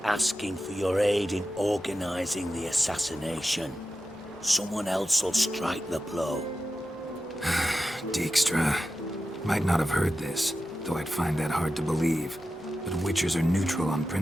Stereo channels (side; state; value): both; normal; correlation 0.92